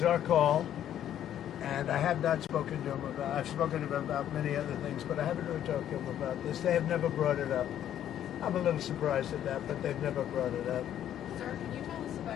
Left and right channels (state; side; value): quieter; right; 10.8 dB